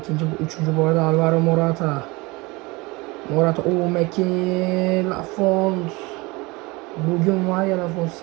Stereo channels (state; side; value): quieter; left; 24.1 dB